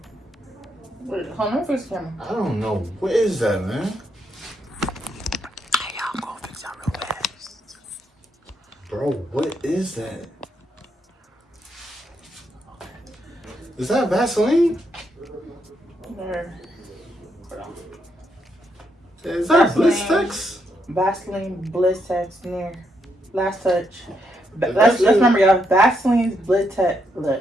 Wait, hold on, fix the camera. I don't know. What is that, man? Hey, y'all, go fix y'all real fast. Bro, what is that? Is that Vaseline? There. Hold on. Is that Vaseline. Blistex? Vaseline Blistex near last touch. That's Let's it. remember y'all. Vaseline's Blistex.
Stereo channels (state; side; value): normal; both; correlation 0.78